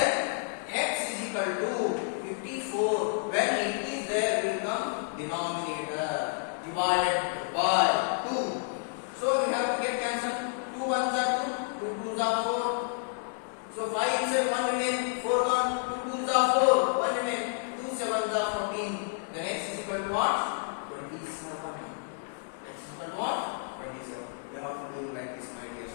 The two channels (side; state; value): right; silent; digital silence